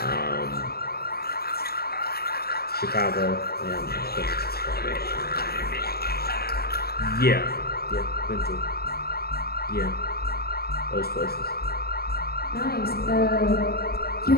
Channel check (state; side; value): late; right; 0.45 ms